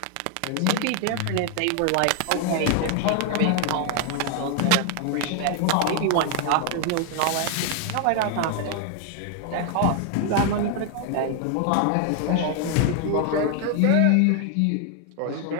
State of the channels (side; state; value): both; different; correlation 0.00